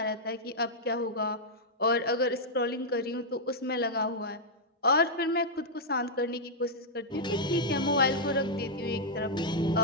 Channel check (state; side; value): normal; both; correlation -0.06